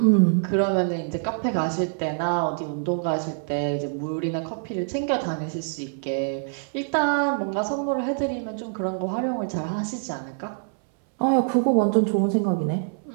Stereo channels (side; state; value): left; silent; 62 dB below the other